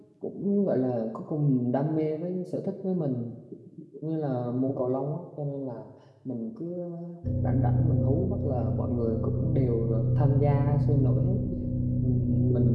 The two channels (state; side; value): identical; both; correlation 1.00